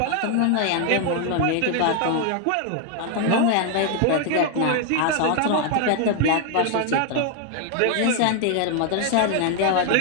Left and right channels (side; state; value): both; different; correlation 0.00